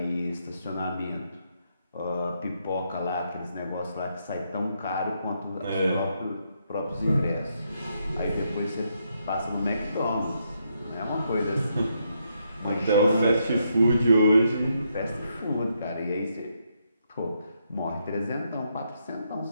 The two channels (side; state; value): both; inverted; correlation -0.78